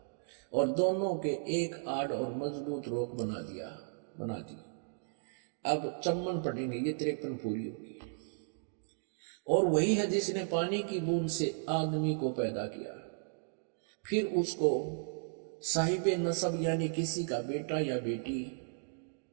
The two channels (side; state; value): left; silent; digital silence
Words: और दोनों के एक आड़ और मजबूत रोक बना दी। अब 54 पढ़ेंगे, ये 53 पूरी होगी। और वही है जिसने पानी की बूंद से आदमी को पैदा किया, फिर उसको साहिब नसब यानी किसी का बेटा या बेटी,